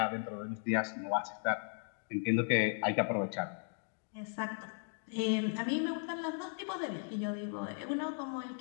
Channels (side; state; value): right; silent; 53 dB below the other